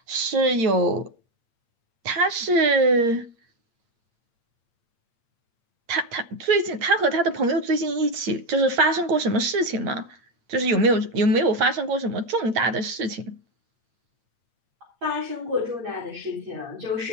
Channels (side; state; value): left; late; 8.7 ms